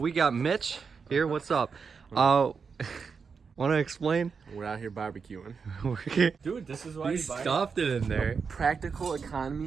got Mitch here. What's up? Want to explain? We're out here barbecuing. Dude, this is why you you stuffed it in there. Practical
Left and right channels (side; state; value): left; quieter; 5.6 dB